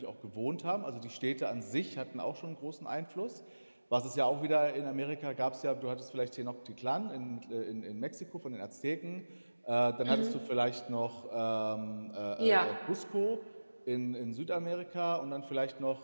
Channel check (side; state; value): both; inverted; correlation -1.00